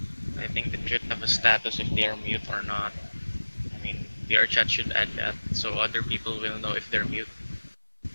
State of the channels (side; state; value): both; inverted; correlation -1.00